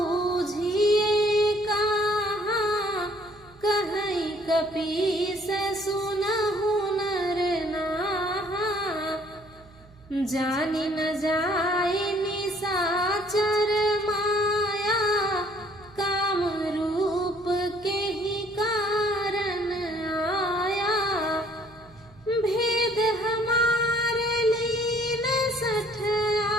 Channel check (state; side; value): noise; right; hum, 25 dB below the sound